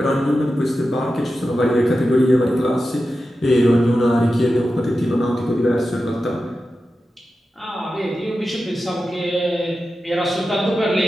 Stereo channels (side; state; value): both; normal; correlation 0.92